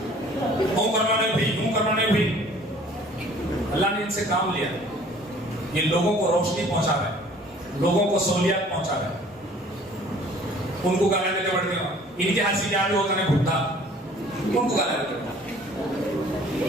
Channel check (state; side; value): normal; both; correlation 0.52